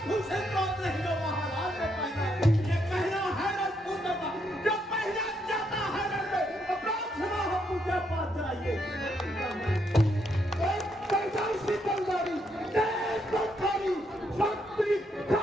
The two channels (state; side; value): normal; both; correlation 0.76